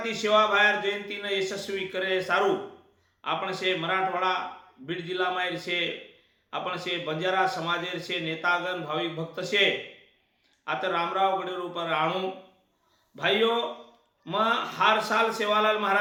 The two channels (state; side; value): identical; both; correlation 1.00